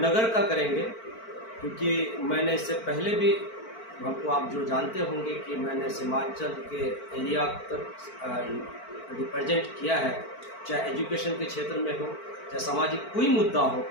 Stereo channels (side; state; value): right; late; 4.5 ms